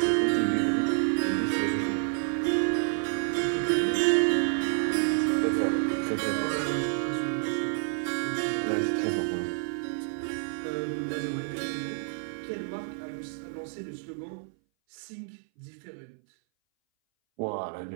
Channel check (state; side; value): silent; left; 59 dB below the other